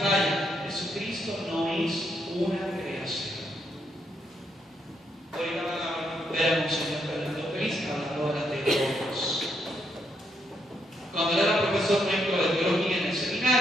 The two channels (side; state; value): both; normal; correlation 0.76